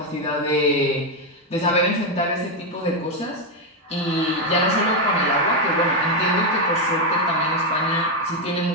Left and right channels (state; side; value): normal; both; correlation 0.05